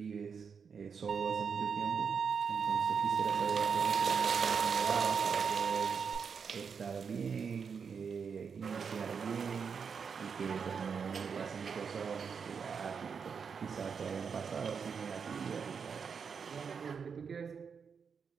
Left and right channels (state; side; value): quieter; left; 6.2 dB